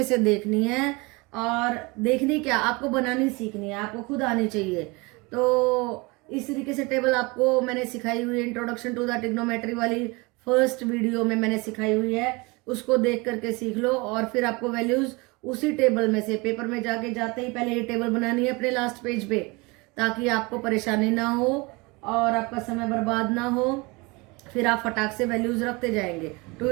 से देखनी है, और देखनी क्या, आपको बनानी सीखनी है, आपको खुद आनी चाहिए। तो इस तरीके से टेबल आपको मैंने सिखाई हुई है, इंट्रोडक्शन टू द ट्रिग्नोमेट्री वाली फर्स्ट वीडियो में मैंने सिखाई हुई है, उसको देख करके सीख लो। और फिर आपको वैल्यूज उसी टेबल में से पेपर में जाके जाते ही पहले ये टेबल बनानी है अपने लास्ट पेज पे, ताकि आपको परेशानी ना हो और आपका समय बर्बाद ना हो। फिर आप फटाक से वैल्यूज रखते जाएंगे। 2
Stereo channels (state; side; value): quieter; left; 26.0 dB